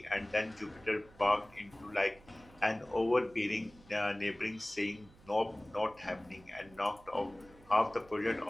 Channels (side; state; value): right; noise; hum, 24 dB below the sound